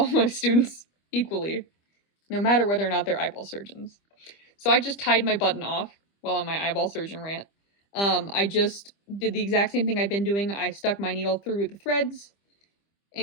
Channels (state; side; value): late; right; 25 ms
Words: my students equally, no matter whether or not they're eyeball surgeons. So I just tied my button off while on my eyeball surgeon rant. I just did the exact same thing I've been doing. I stuck my needle through the threads,